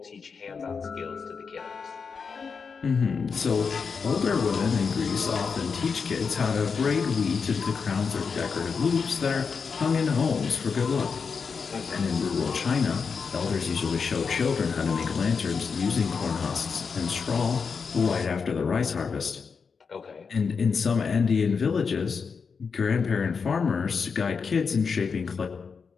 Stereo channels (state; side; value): quieter; right; 5.5 dB